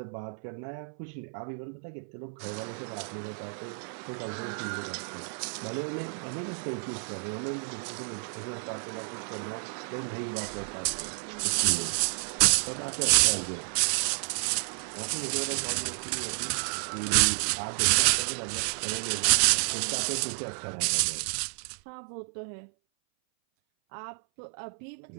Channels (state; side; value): silent; left; 58 dB below the other